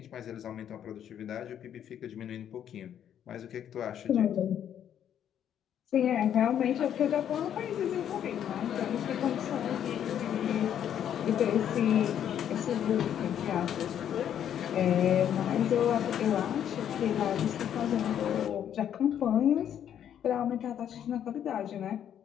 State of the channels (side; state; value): right; quieter; 9.7 dB